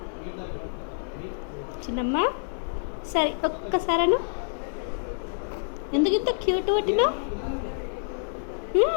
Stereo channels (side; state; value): right; silent; digital silence